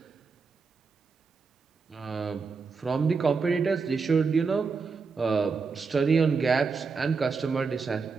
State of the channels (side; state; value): left; quieter; 4.9 dB